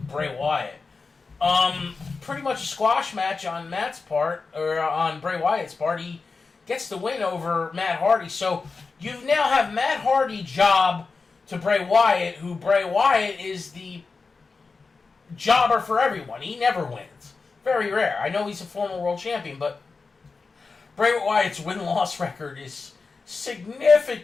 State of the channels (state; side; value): quieter; right; 4.4 dB